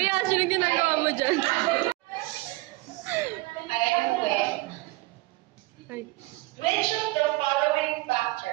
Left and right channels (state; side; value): quieter; left; 21.4 dB